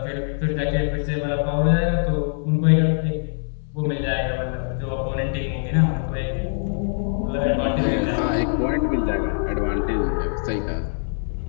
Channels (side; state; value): right; silent; 63 dB below the other